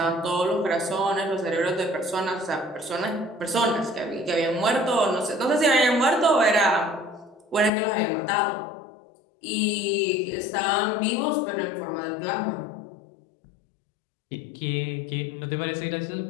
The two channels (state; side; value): drops out; right; at 7.7 s